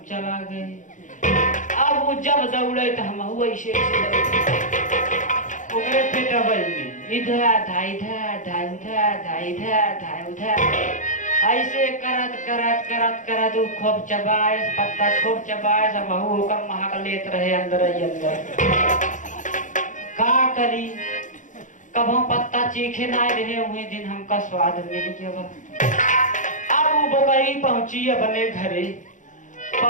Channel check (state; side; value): late; right; 0.37 ms